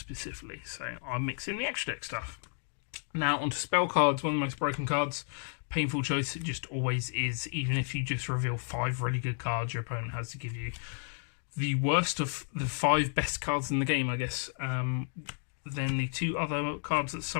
so I mix in the extra deck stuff. Now, onto spell cards, one of the most broken cards. Painful choice, it just always is. Even if you just reveal 5 really good cards, your opponent has to give you the worst of the 5 best cards in the game, I guess. Then the 2 other cards that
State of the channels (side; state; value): right; silent; 55 dB below the other